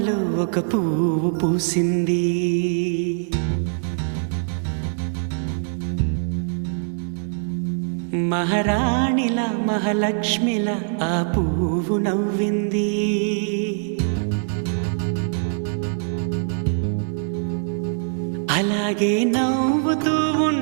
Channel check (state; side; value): silent; left; digital silence